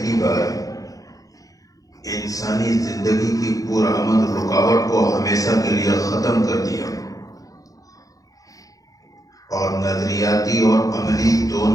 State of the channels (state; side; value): late; right; 0.17 ms